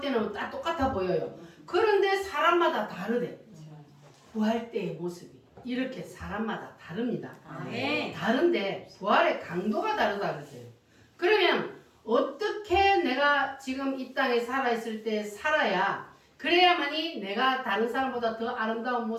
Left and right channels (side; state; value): both; identical; correlation 1.00